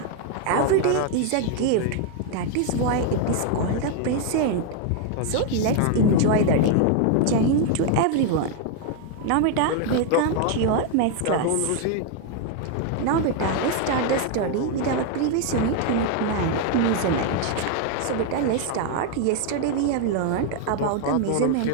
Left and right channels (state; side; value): different; both; correlation 0.00